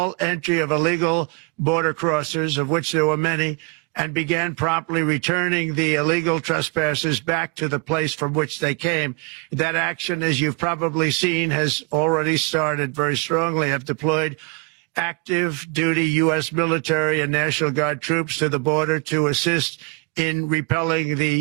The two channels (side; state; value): left; quieter; 28.8 dB